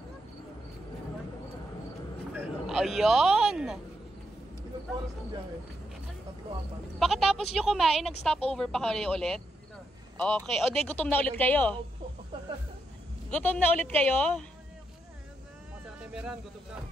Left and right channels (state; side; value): normal; both; correlation 0.81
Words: Ayun! Ilang oras ng biyahe? 3-4. Pagkatapos nyo kumain, nag-stop over pa kayo ulit? Okay. O, di, gutom na ulit kayo? Gutom na ulit kayo?